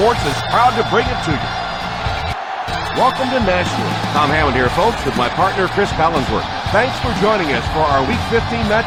is proud to bring it to you. Welcome to Nashville. Tom Hammond here, folks, with my partner, Chris Collinsworth. Thanks for joining us for our Week 15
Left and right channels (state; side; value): identical; both; correlation 1.00